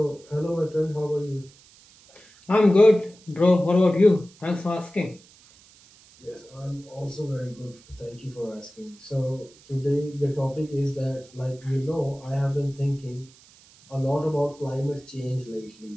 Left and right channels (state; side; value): noise; right; hiss, 26 dB below the sound